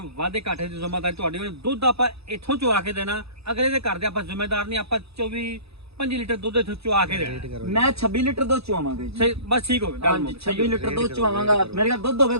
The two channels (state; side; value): late; left; 0.78 ms